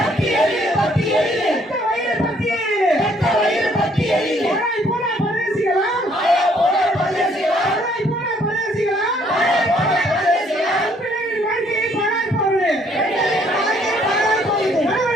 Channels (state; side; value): normal; both; correlation 0.65